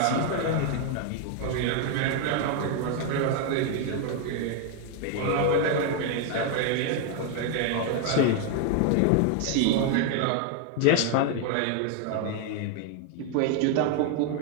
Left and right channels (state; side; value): different; both; correlation 0.01